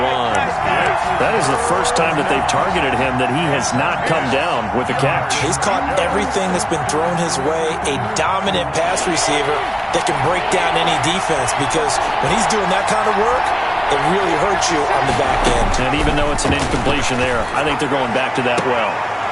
That is the first time that they've targeted him that he has not come down with a catch. He's caught everything that's been thrown his way. A dominant pass receiver that can break down any defense, because when he's doing that kind of work, it really hurts you on the back end. And even though it's an incompletion there, I think they're going back to that well.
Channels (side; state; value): both; identical; correlation 1.00